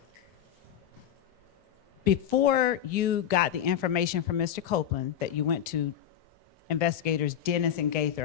Before you got the information from Mr. Copeland that you went to investigators Dennis and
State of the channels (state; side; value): quieter; right; 10.0 dB